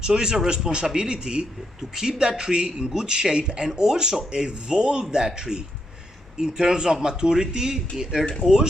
So it's a responsibility to keep that tree in good shape and also evolve that tree in terms of maturity and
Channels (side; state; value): both; normal; correlation 0.79